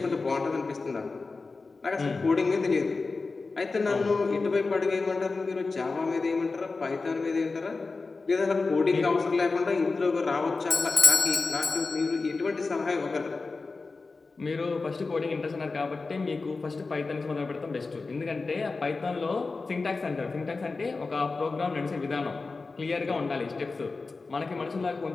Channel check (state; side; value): quieter; right; 4.0 dB